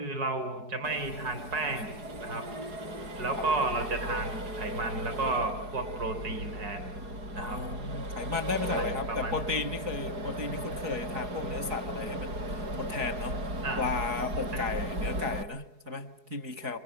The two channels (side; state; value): left; late; 4.7 ms